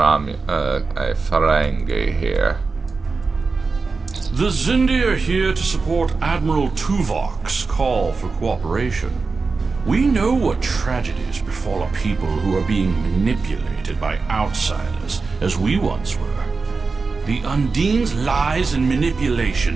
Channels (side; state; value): left; quieter; 4.3 dB